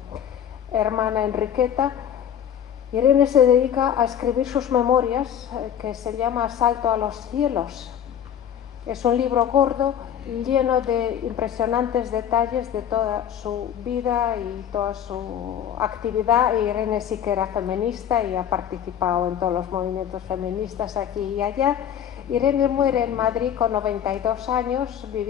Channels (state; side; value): quieter; right; 9.5 dB